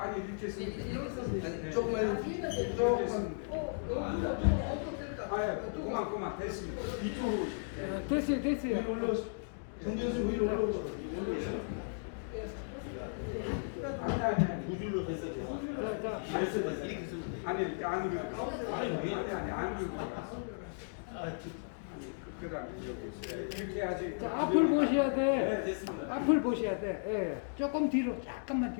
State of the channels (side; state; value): right; silent; digital silence